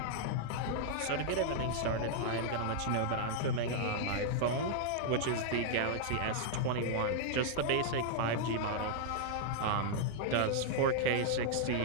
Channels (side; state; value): both; different; correlation -0.01